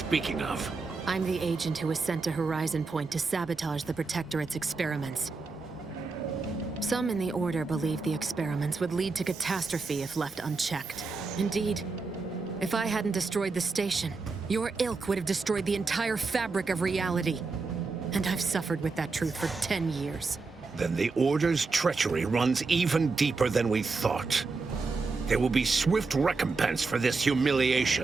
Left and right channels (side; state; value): left; quieter; 4.1 dB